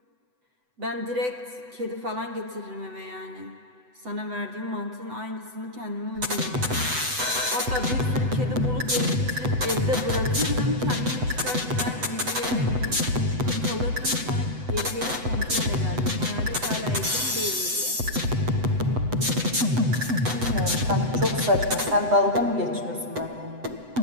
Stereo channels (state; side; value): late; left; 8.0 ms